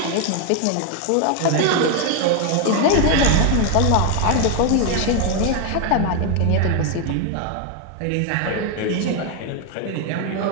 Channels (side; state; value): both; different; correlation 0.01